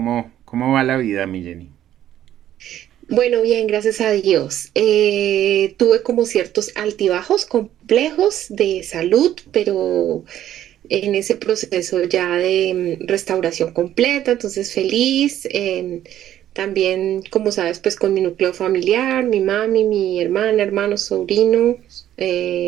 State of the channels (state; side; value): quieter; left; 11.9 dB